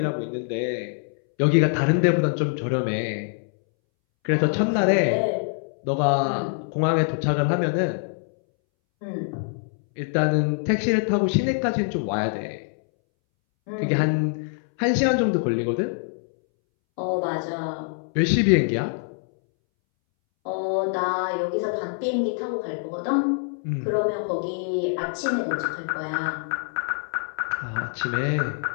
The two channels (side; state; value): right; silent; 62 dB below the other